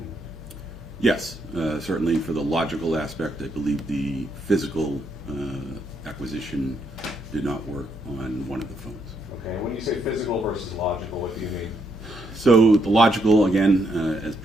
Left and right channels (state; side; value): normal; both; correlation 0.76